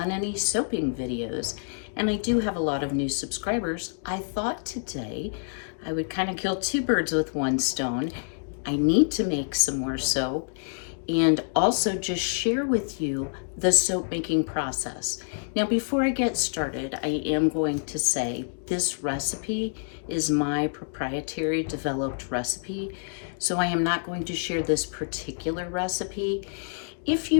any soaping videos, and I do have a lot of new subscribers, I thought today I would kind of kill two birds with one stone. I need to make some more soap and also just share with you the soap making process. Now, before I get started, I am going to say this recipe is my proprietary developed recipe, so I am not going to share this particular recipe. If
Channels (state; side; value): silent; right; digital silence